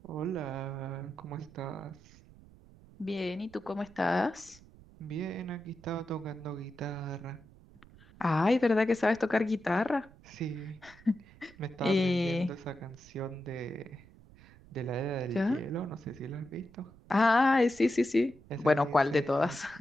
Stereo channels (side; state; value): right; noise; rumble, 23 dB below the sound